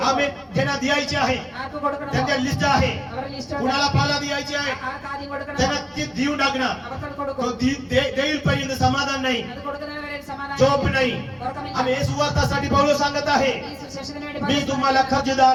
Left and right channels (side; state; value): both; identical; correlation 1.00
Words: आम्ही ज्यांना द्यायचे आहे ആർക്ക് കൊടുക്കണം? त्यांच्या लिस्ट आहे. അവരുടെ ലിസ്റ്റ് कुणाला पाला द्यायची आहे ആർക്ക് ആദ്യം കൊടുക്കണം? त्यांना ते देऊन टाकणार. അവർക്ക് तो കൊടുക്കും. देईल पर्यंत समाधान नाही. അത് കൊടുക്കുന്നവരെ സമാധാനം झोप नाही. ഉറക്കമില്ല. आम्ही हे सुवार्तासाठी पौलुस सांगत आहे ഈ സുവിശേഷത്തിന് വേണ്ടി मी तुम्हाला